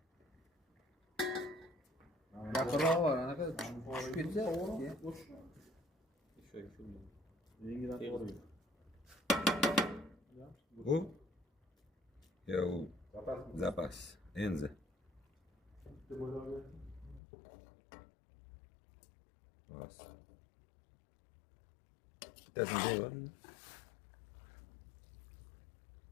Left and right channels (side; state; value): right; drops out; at 17.2 s